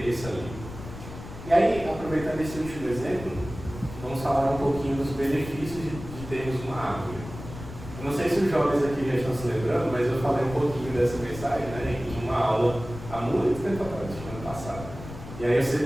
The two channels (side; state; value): left; noise; rumble, 12 dB below the sound